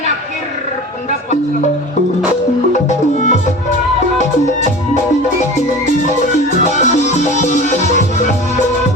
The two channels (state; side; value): normal; both; correlation 0.36